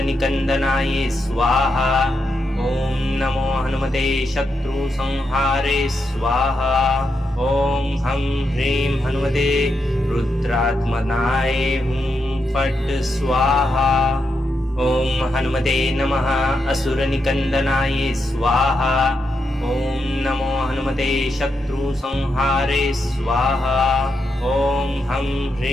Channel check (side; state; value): both; normal; correlation 0.83